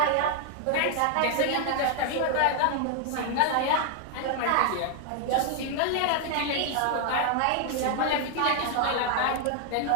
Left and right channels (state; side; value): different; both; correlation 0.00